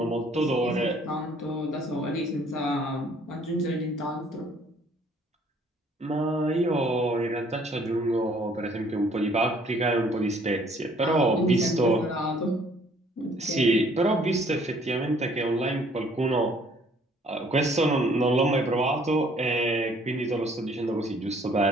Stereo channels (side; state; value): both; normal; correlation 0.60